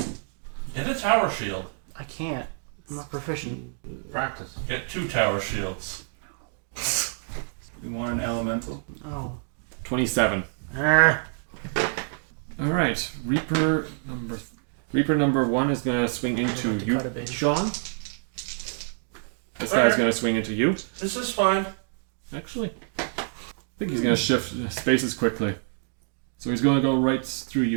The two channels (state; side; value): silent; left; 60 dB below the other